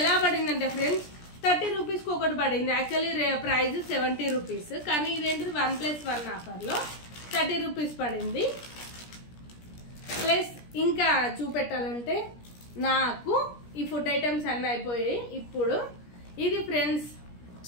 పడిందంటే ఫ్రెండ్స్ 30 రూపీస్కి ఒకటి పడింది. యాక్చువల్లీ ప్రైస్ 70 రూపీస్, కానీ ఇదేంటిది 1+1 ఆఫర్లో 30 రూపీస్ పడింది. ప్లస్ ఇంకా చూపెట్టాలంటే నాకు ఈ ఫుడ్ ఐటమ్స్ అన్నీ అయిపోయాయి. ఇప్పుడు ఇది ఫ్రెండ్స్,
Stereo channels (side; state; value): right; late; 17 ms